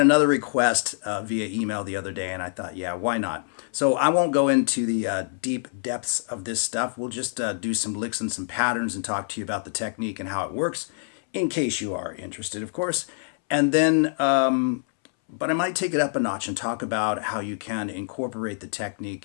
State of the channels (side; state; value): right; silent; 61 dB below the other